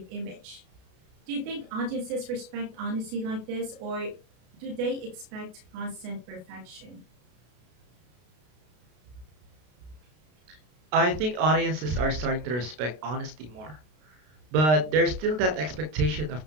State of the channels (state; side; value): late; left; 32 ms